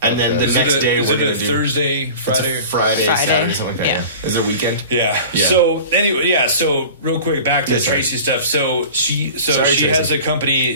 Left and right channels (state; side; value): inverted; both; correlation -0.39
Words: And then the Okay. next day is we're it gonna a do Thursday, it's a Friday? Friday, Saturday, something like that. Yeah. Is it a weekend? Yeah. Yeah. So anyway, so real quick back to Yes, sir. Tracy stuff. So she Sorry, she Tracy. has a